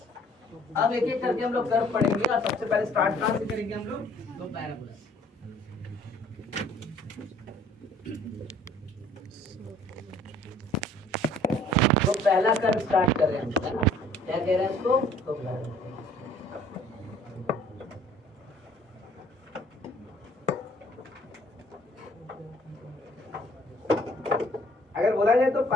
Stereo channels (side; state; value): both; normal; correlation 0.56